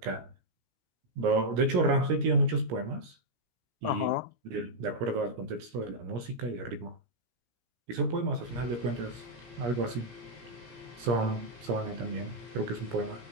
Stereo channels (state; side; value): late; left; 17 ms